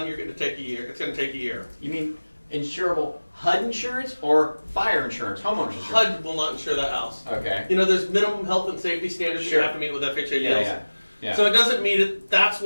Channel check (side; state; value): both; inverted; correlation -1.00